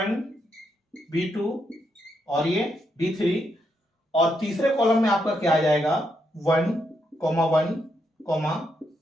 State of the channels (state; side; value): normal; both; correlation 0.80